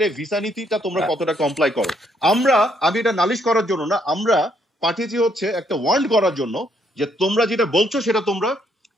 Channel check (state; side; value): normal; both; correlation 0.71